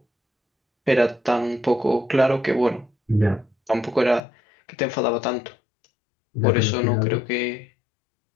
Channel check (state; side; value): drops out; right; at 4.2 s